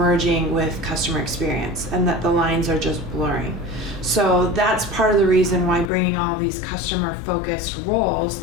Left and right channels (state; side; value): drops out; right; at 5.9 s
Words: with customer experience and that the lines are just blurring. So that's part of the reason why bringing all these customer focused roles